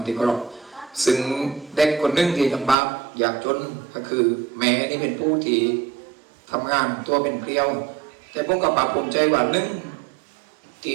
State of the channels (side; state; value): left; drops out; at 2.8 s